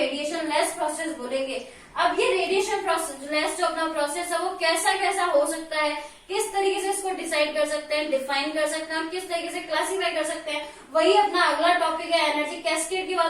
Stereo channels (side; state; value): both; identical; correlation 1.00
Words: लेस प्रोसेस बोलेंगे। अब ये रेडिएशन लेस जो अपना प्रोसेस है वो कैसा कैसा हो सकता है, किस तरीके से इसको डिसाइड कर सकते हैं, डिफाइन कर सकते हैं और किस तरीके से क्लासिफाई कर सकते हैं, वही अपना अगला टॉपिक है। एनर्जी कैस्केड के